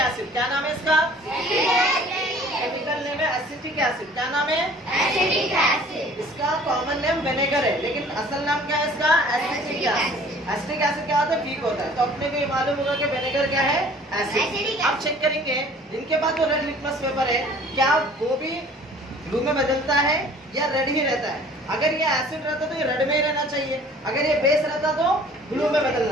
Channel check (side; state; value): both; normal; correlation 0.50